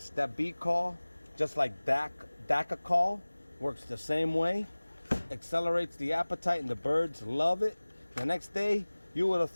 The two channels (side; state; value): both; inverted; correlation -1.00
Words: That Bee-Call, just like Call, works the same way. Accelerates the appetite and the birds love it. The next day, you would have